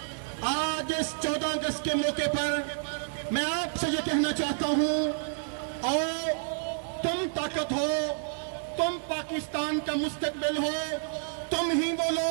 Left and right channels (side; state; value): left; silent; digital silence